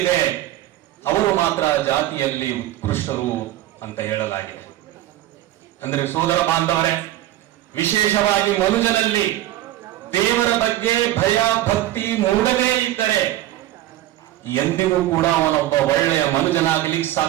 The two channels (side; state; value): left; quieter; 14.5 dB